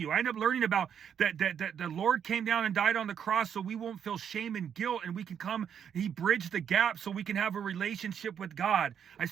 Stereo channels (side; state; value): left; quieter; 8.3 dB